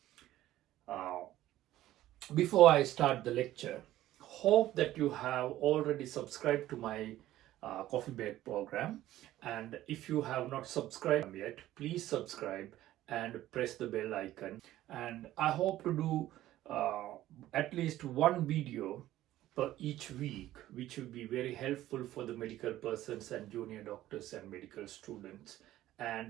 Uh, Before I start the lecture, hope that you have already subscribed to my coffee break program, and if you have not subscribed yet, please subscribe and press the bell icon. And I hope to do at least one video per each week, which will be very helpful for the medical persons and junior doctors and medical students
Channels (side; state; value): left; quieter; 14.4 dB